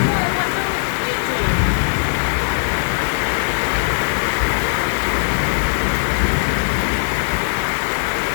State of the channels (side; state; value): right; silent; 59 dB below the other